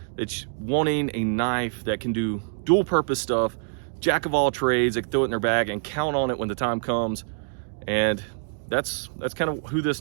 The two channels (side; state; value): left; silent; digital silence